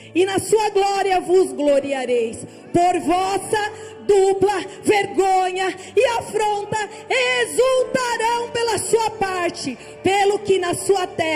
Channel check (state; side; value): identical; both; correlation 1.00